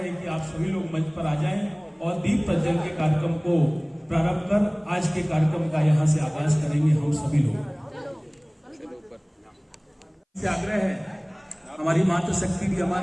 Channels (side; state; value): both; identical; correlation 1.00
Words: कि आप सभी लोग मंच पर आ जाएं और दीप प्रज्वलन के कार्यक्रम को प्रारंभ कर आज के कार्यक्रम का यहाँ से आगाज करेंगे हम सभी लोग। आग्रह है, हमारी मातृशक्ति भी